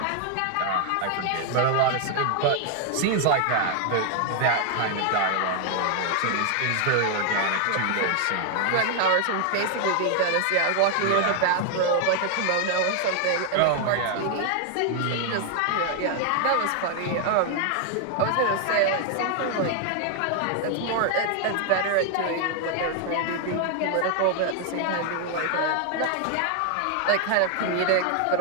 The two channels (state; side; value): different; both; correlation 0.00